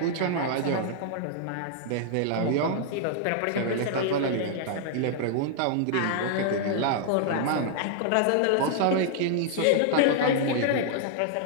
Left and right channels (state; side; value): different; both; correlation -0.01